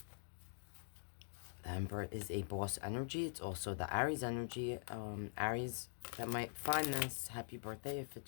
The Emperor is a boss energy. It's also the Aries energy. Aries that might find this, happy birthday if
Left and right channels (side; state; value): right; silent; digital silence